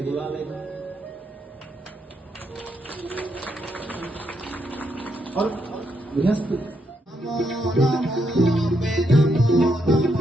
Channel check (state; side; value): normal; both; correlation 0.78